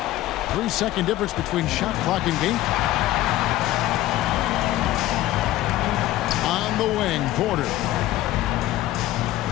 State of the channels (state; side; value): quieter; right; 15.2 dB